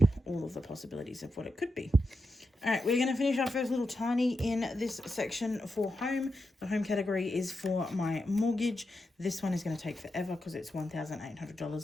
all of the possibilities of what it could be. All right, we're going to finish our first little tiny in this section for home. The home category is for my mortgage. This one is going to take forever because it's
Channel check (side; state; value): both; normal; correlation 0.87